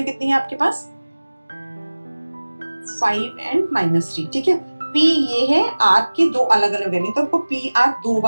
कितनी है आपके पास 5 एंड -3, ठीक है। P ये है, R की दो अलग अलग वैल्यू, तो आपको PR 2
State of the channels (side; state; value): both; inverted; correlation -1.00